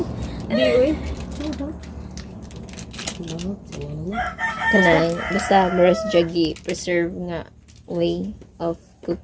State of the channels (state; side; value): identical; both; correlation 1.00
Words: Di, uy. Kanang basta maras jagi preserve nga way of